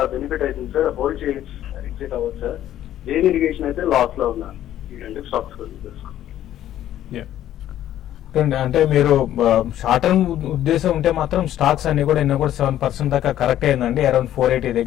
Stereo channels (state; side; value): quieter; right; 12.2 dB